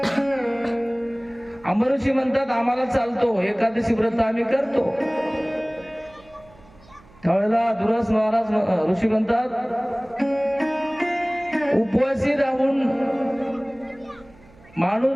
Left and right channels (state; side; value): noise; right; hum, 26 dB below the sound